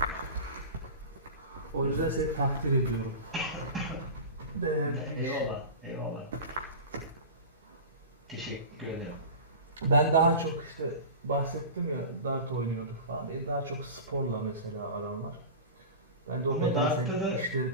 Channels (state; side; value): inverted; both; correlation -0.31